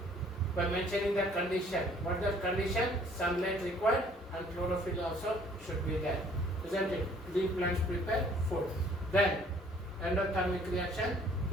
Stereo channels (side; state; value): both; normal; correlation 0.58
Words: By mentioning the condition. What is the condition? Sunlight required and chlorophyll also should be there. Isn't it? Green plants prepare food. Then endothermic reaction,